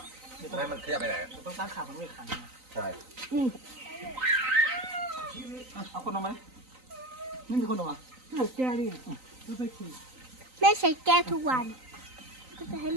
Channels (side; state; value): left; late; 3.9 ms